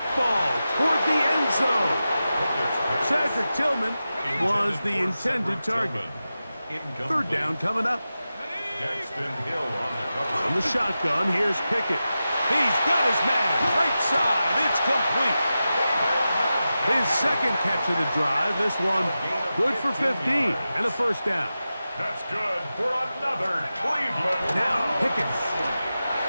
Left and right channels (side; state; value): both; inverted; correlation -0.93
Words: ball toward the end zone. Cedric Tillman was the intended target. Third down coming up. On the shotgun, here's Pickett. He's got his man. Right side. It's complete. His second catch of the drive. This one good for 15 and a first down. That's good for another Cleveland. Now Pickett.